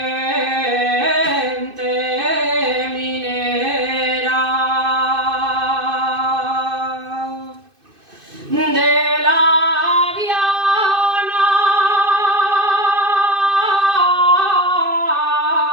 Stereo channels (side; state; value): left; late; 2.5 ms